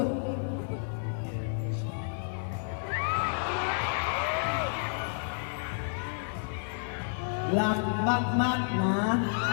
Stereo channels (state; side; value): silent; right; 57 dB below the other